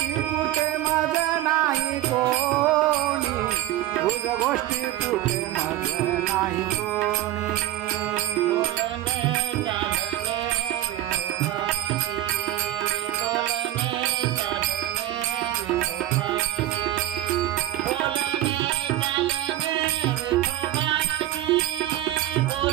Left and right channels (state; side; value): quieter; left; 14.0 dB